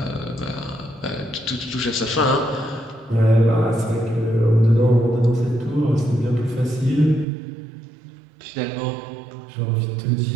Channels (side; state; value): left; drops out; at 7.2 s